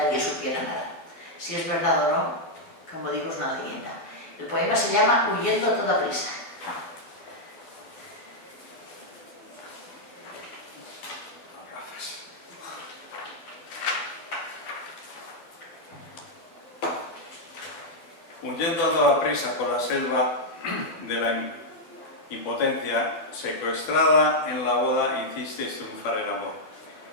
supiera nada. Si es verdad o no, como digo, es una leyenda. El poema se llama Huyendo a toda prisa. Huyendo a toda prisa por la selva de la impotencia, secuestrada en la boda, hicisteis triunfar el amor.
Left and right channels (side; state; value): right; late; 12 ms